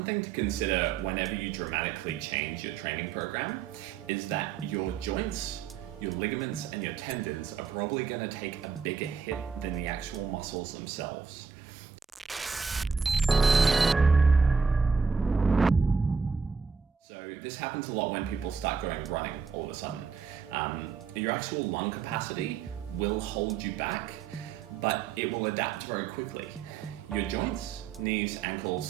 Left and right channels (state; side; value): quieter; left; 5.9 dB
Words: thing to consider whenever you dramatically change your training program is that your joints, your ligaments, and your tendons are probably going to take a bigger hit than the actual muscles themselves. So this happens a lot when people start going running all of a sudden. Your actual lung capacity will hold you back, but it will adapt very quickly. Your joints, knees,